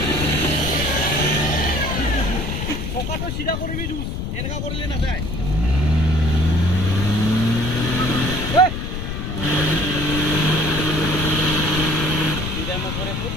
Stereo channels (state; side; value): noise; left; rumble, 4 dB below the sound